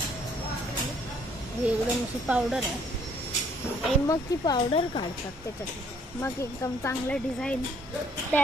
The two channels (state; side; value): normal; both; correlation 0.63